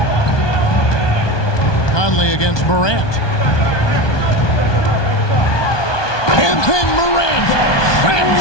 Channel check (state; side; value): late; right; 1.2 ms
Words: Conley against Morant. And then Morant